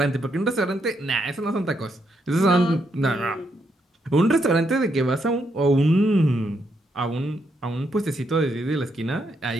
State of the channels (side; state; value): both; normal; correlation 0.78